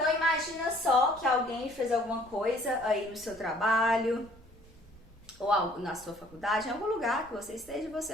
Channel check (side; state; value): both; normal; correlation 0.57